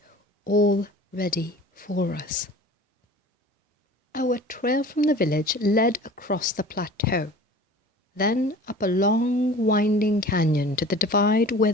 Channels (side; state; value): both; normal; correlation 0.42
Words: all ready for us. Our trail from the village led across the plateau, then up a long winding canyon to the divide where